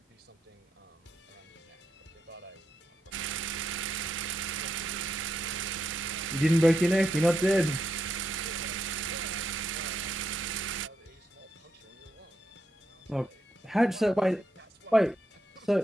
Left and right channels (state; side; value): normal; both; correlation 0.82